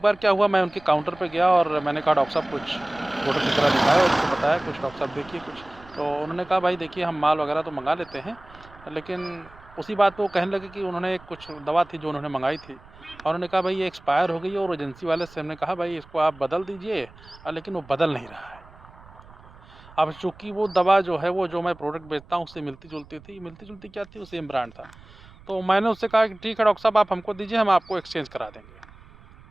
बार क्या हुआ, मैं उनके काउंटर पे गया और मैंने कहा डॉक्टर साहब कुछ फ़ोटो खींचना दिखाया और उनको बताया कुछ, डॉक्टर साहब देखिए कुछ। तो उन्होंने कहा भाई देखिए हम माल वगैरह तो मंगा लेते हैं, लेकिन उसी बात पे वो कहने लगे कि उन्होंने एक कुछ दवा थी जो उन्होंने मंगाई थी और उन्होंने कहा भाई ये एक्सपायर हो गई है, और एजेंसी वाले से हमने कहा भाई इसको आप बदल दीजिए, लेकिन वो बदल नहीं रहा है। अब चूँकि वो दवा जो है, वो जो मैं प्रोडक्ट बेचता हूँ उससे मिलती-जुलती थी, मिलती-जुलती क्या थी, वो सेम ब्रांड था। तो मैंने उससे कहा कि ठीक है डॉक्टर साहब आप हमको दीजिए, हम आपको एक्सचेंज करा देंगे।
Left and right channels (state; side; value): noise; right; rumble, 23 dB below the sound